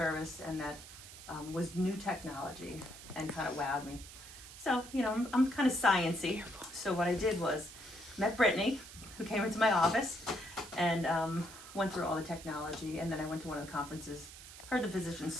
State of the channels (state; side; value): noise; right; hiss, 15 dB below the sound